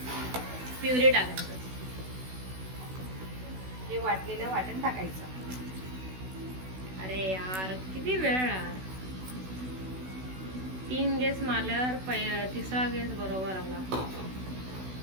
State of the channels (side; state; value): left; late; 16 ms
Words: प्युरी टाकायचं. हे वाटलेलं वाटण टाकायचं. अरे यार, किती वेळ यार. 3 गेस मारल्यावर तिसरा गेस बरोबर आला.